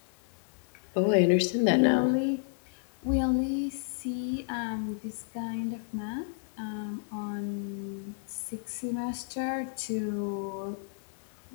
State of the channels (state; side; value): silent; right; 57 dB below the other